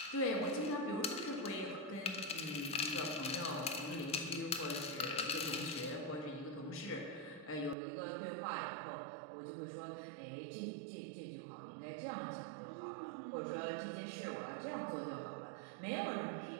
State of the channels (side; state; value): left; drops out; at 7.8 s